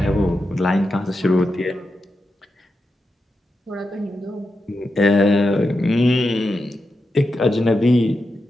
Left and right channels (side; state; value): both; normal; correlation 0.88